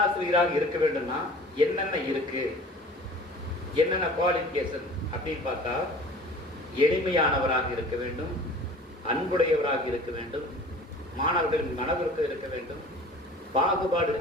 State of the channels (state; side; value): normal; both; correlation 0.44